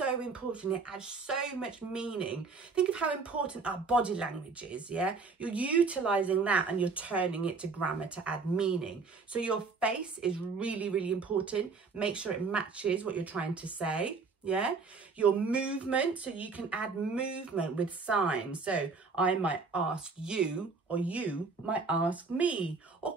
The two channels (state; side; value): quieter; left; 4.5 dB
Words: important. It adds so much meaning. Think of how important our body language is, yeah? You're utilising that and you're turning it to grammar to add meaning. So your face is really important. Make sure it matches what you're trying to say. Yeah, your movement, so you can add movement with signs. So I might ask you, or you might ask me, or